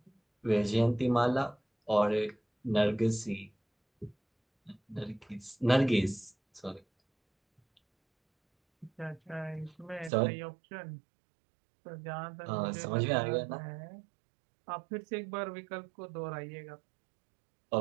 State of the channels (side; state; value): left; drops out; at 10.1 s